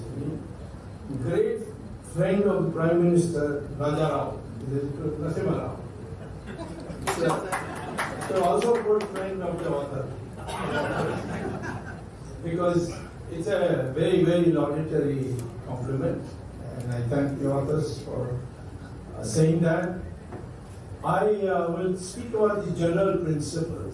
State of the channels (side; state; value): both; identical; correlation 1.00